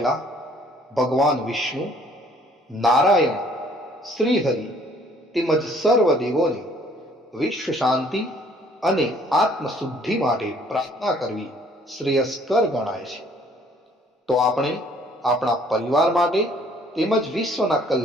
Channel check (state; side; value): normal; both; correlation 0.59